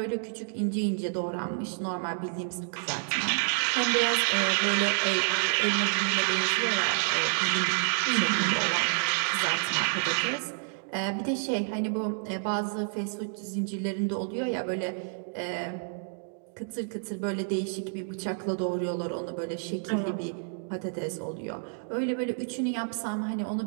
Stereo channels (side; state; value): left; silent; digital silence